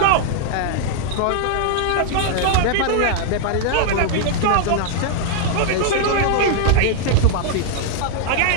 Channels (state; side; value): different; both; correlation -0.01